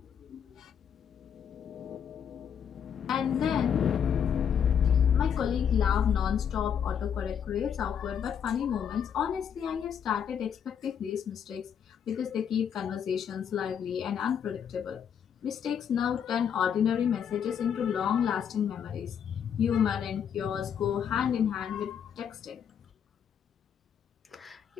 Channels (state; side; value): quieter; right; 8.0 dB